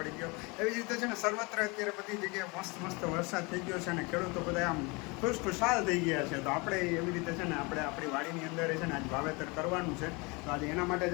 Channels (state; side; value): quieter; right; 27.6 dB